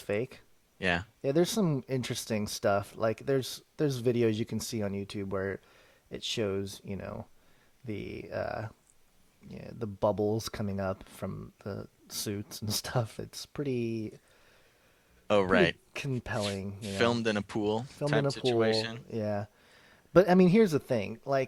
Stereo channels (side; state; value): both; identical; correlation 1.00